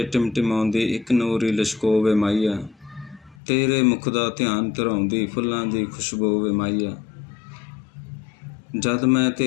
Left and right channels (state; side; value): drops out; right; at 3.4 s